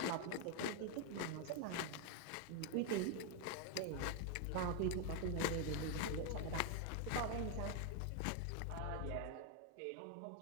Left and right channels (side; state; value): both; different; correlation 0.01